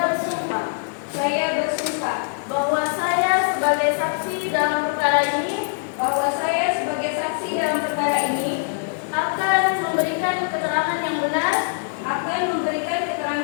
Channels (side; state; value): right; silent; 63 dB below the other